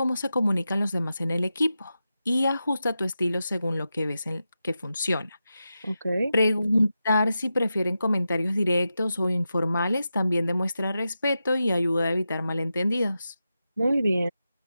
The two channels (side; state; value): both; inverted; correlation -0.90